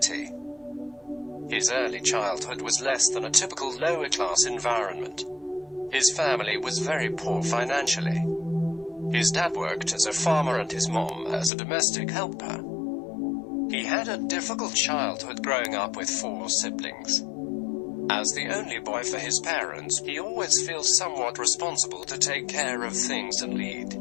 His early childhood was less than a typical lower-class environment. His family was very poor financially. His dad worked as a farmer and his mom as a domestic helper. He had a difficult childhood growing up with 4 siblings. As the only boy for his parents, he always feels somewhat responsible to take care of things and lead.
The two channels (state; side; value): drops out; right; at 11.5 s